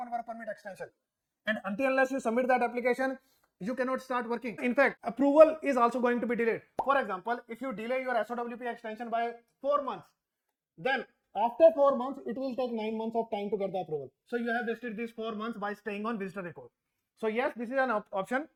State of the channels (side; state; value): both; identical; correlation 1.00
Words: work permit extension. And until unless you submit that application, you cannot start working. In fact, approval is also going to be delayed. For example, if you delay your SOWP extension by 4 months, then after 4 months, it will take 9 months of time to get the approval. So you have wasted these 4 months by staying on visitor record. So yes, this is an option,